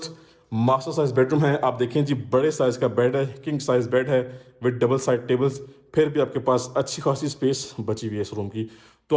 मास्टर साइज बेडरूम है। आप देखें जी, बड़े साइज का बेड है, किंग साइज बेड है विद डबल साइड टेबल्स। फिर भी आपके पास अच्छी खासी स्पेस बची हुई है इस रूम की, तो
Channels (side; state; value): both; identical; correlation 1.00